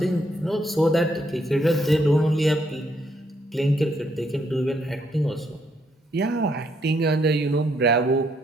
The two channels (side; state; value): both; normal; correlation 0.73